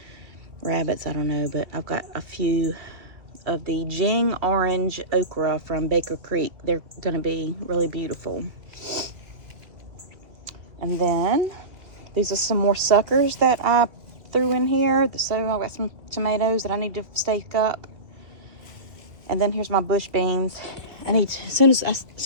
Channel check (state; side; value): late; left; 2.7 ms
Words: rabbits, I don't know. But I've got a few of the Jing orange okra from Baker Creek. They're gonna be really beautiful. And then these are some more suckers that I threw in here. So I've got some tomatoes that I need to stake up. And then here's my bush beans. As soon